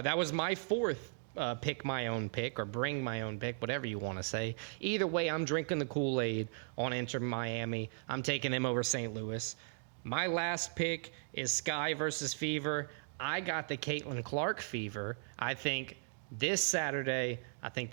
was my fourth pick my own pick or bring my own pick, whatever you want to say. Either way, I'm drinking the Kool-Aid on Inter Miami. I'm taking them over St. Louis. My last pick is Sky versus Fever. I got the Caitlin Clark Fever. I think this Saturday, I think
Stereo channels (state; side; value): silent; left; digital silence